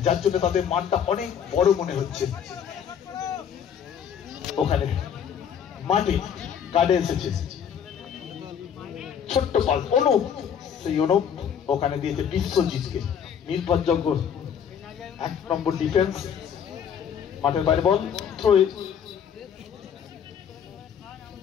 যার জন্য তাদের মাঠটা অনেক বড় মনে হচ্ছে। ওখানে মাঠে কার্ডে এসেছে ছোট্ট পাস, অনুপ, সেই অনুপ ওখানে দিয়েছে বিশ্বজিৎকে। নির্ভরযোগ্য 1 নম্বর ডিফেন্স। মাঠের বাইরে বল, থ্রো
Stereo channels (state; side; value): quieter; right; 8.1 dB